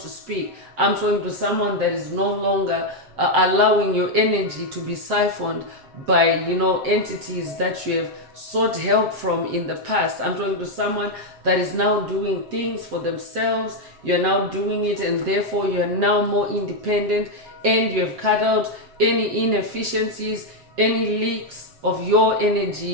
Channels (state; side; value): late; left; 7.7 ms